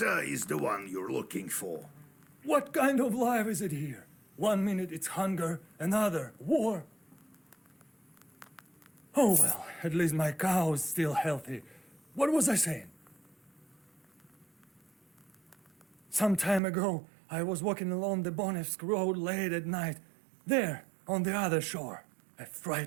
is the one you're looking for. What kind of life is it here? 1 minute it's hunger, another war. Oh well, at least my cow is still healthy. What was I saying? Some time ago, I was walking along the Bonevsk road late at night. There, on the other shore. A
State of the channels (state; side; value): drops out; left; at 16.6 s